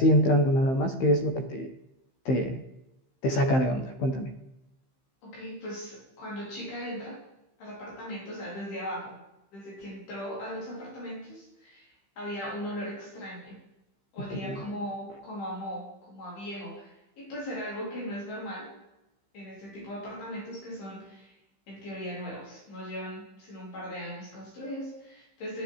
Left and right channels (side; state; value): right; late; 15 ms